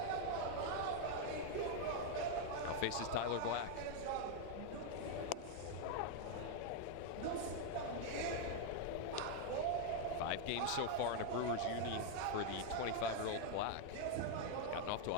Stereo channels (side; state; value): both; different; correlation 0.00